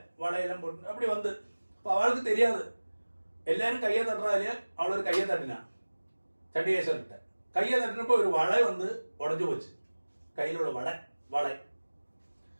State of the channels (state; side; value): inverted; both; correlation -1.00